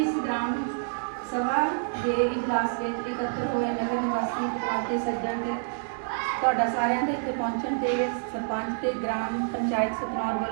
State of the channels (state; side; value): silent; left; digital silence